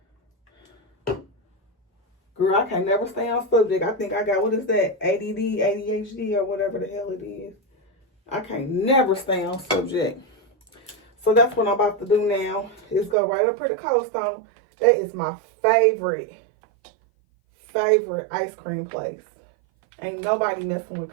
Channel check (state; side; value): drops out; left; at 13.2 s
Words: Girl, I can never stay on subject. I think I got, what is that? ADD, ADHD, or whatever the hell it is. I can't never stay on subject. So that's what I'm about to do now. Is go right up here to Cold Stone. That is my favorite ice cream place. Ain't nobody messing with